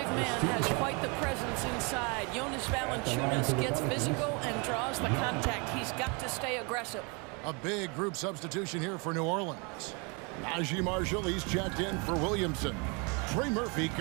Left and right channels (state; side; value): quieter; left; 31.8 dB